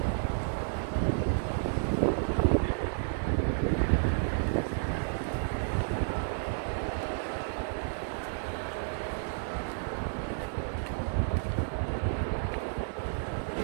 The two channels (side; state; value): left; silent; digital silence